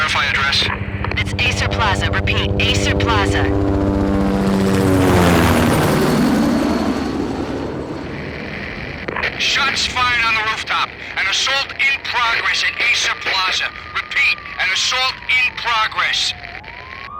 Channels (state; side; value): identical; both; correlation 1.00